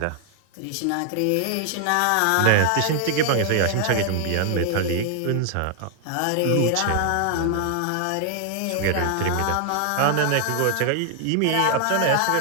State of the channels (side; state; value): both; different; correlation 0.00